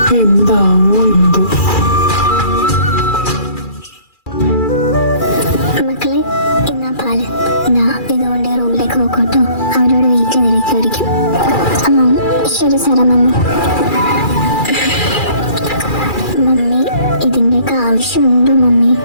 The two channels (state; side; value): late; right; 2.4 ms